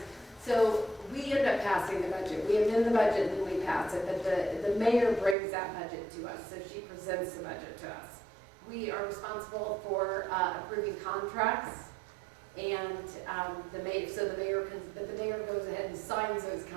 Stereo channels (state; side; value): drops out; left; at 5.4 s